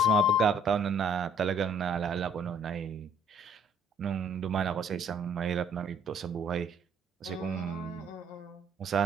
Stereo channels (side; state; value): both; normal; correlation 0.62